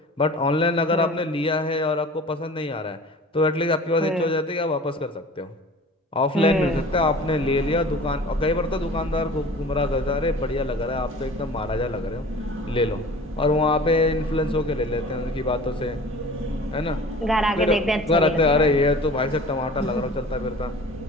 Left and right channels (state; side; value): normal; both; correlation 0.43